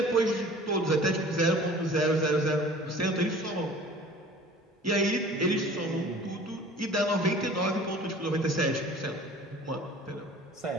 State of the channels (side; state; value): both; normal; correlation 0.46